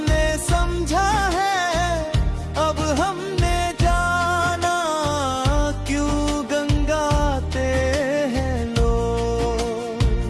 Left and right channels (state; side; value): identical; both; correlation 1.00